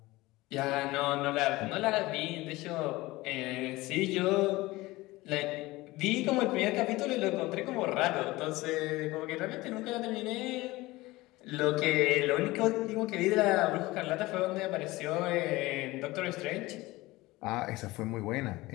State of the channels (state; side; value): quieter; right; 19.9 dB